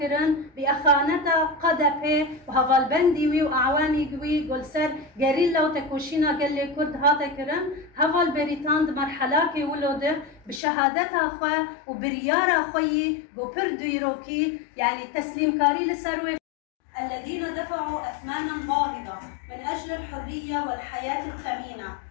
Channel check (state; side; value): drops out; right; at 10.6 s